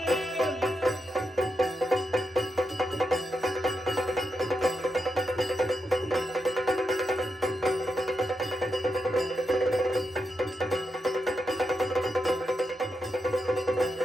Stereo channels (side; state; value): both; normal; correlation 0.85